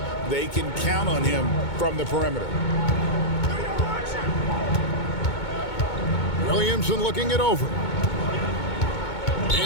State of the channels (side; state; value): right; late; 2.2 ms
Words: they can count on him from the perimeter. Williamson looking it over.